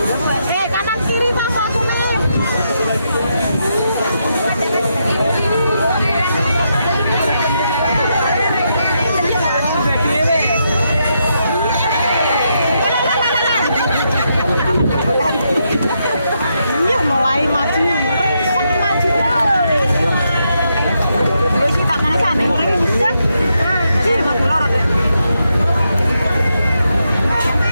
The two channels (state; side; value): inverted; both; correlation -0.81